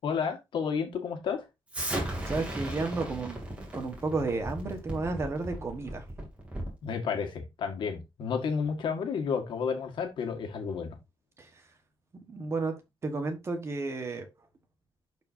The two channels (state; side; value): normal; both; correlation 0.67